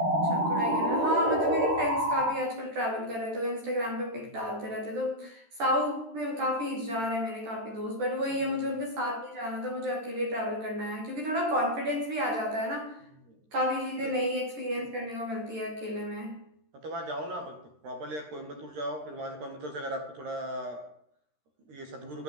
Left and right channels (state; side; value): late; left; 13 ms